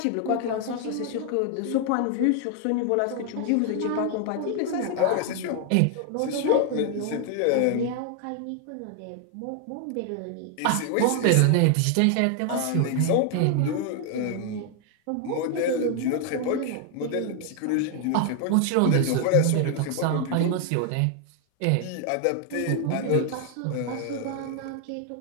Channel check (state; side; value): different; both; correlation 0.00